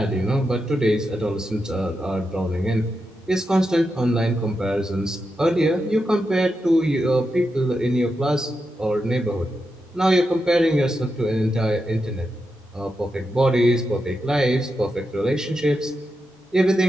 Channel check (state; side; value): normal; both; correlation 0.87